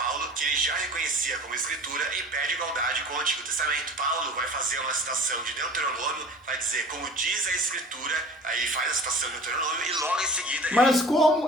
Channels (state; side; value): normal; both; correlation 0.43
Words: que ele já reconhecia como escritura e pede igualdade com o Antigo Testamento. Paulo vai fazer uma citação de Deuteronômio, vai dizer, como diz a escritura, aí faz a citação de Deuteronômio e logo em seguida... Mas